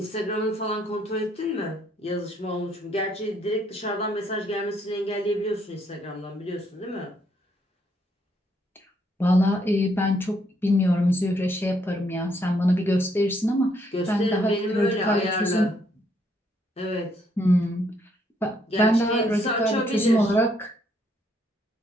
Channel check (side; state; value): both; normal; correlation 0.71